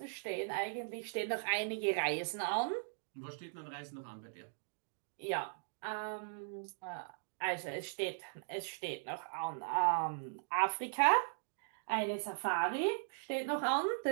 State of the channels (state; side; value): silent; left; digital silence